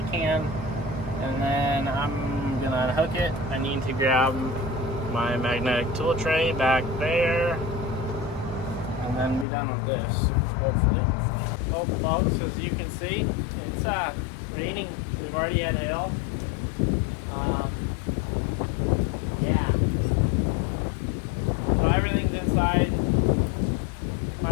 can. And then I'm gonna unhook it. I need to grab my magnetic tool tray back there. And then be done with this, hopefully. Oh, folks, as you can see, it's raining. We've already had hail. Yeah. So everything's inside.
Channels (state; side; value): drops out; right; at 9.5 s